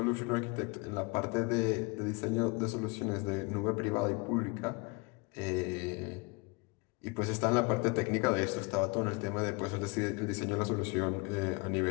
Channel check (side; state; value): right; quieter; 28.5 dB